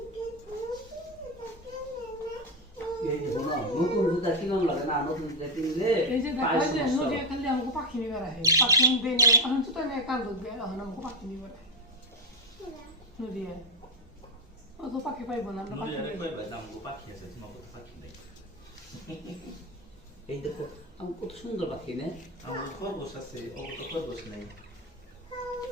এই যে শোনো নতুন জুতা কিনম লাগে না নতুন জুতা কিনলে এই যে দেখা পায়ের যায় সমস্যা নদী হয়। খালি আমাকে পাখি নিবার আহে পাখি আনবে না এখন তো তাই কান্দ দিয়ে এখন আমাকে পাখি নিবার আহে নদী ও তো পাখি পাইব না আমরা নুরি পাখি আরে পাইব। কই ভাই আমগো পাখি আছে তোমার কত পাখি নেই এই দেখো আমি কত সুন্দর পাখি না আমার খরগোশ আছে ও তো খরগোশ নেই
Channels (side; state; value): both; normal; correlation 0.09